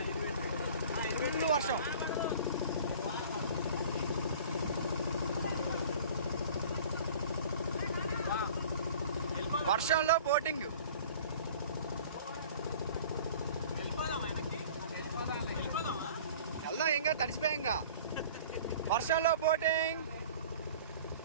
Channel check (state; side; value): inverted; both; correlation -0.45